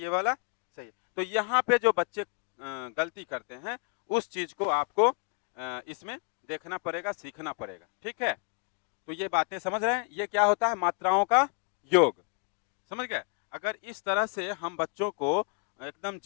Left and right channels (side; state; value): right; quieter; 36.5 dB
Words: वाला सही है। तो यहाँ पे जो बच्चे गलती करते हैं उस चीज को आपको इसमें देखना पड़ेगा, सीखना पड़ेगा। ठीक है। तो ये बातें समझ रहे हैं? ये क्या होता है? मात्राओं का योग। समझ गए? अगर इस तरह से हम बच्चों को एकदम